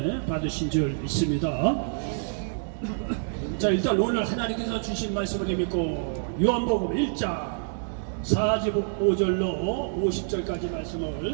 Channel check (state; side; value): silent; left; digital silence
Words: 받으신 줄 믿습니다. 자, 일단 오늘 하나님께서 주신 말씀을 믿고 요한복음 1장 45절로 50절까지